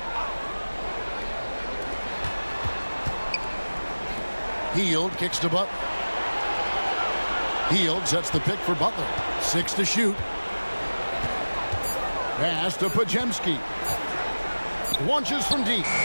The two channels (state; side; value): inverted; both; correlation -1.00